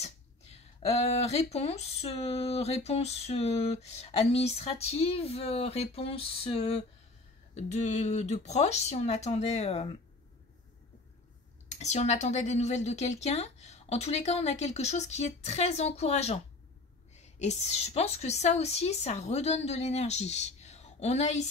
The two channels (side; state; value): right; quieter; 3.1 dB